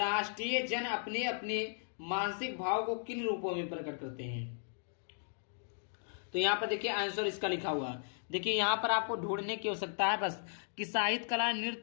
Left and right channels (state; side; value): silent; right; digital silence